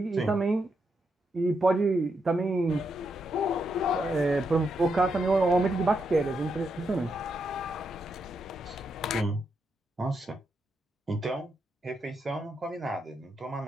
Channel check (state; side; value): normal; both; correlation 0.82